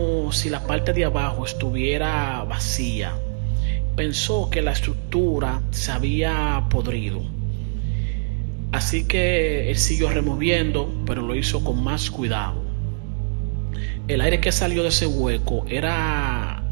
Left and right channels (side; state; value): left; silent; 64 dB below the other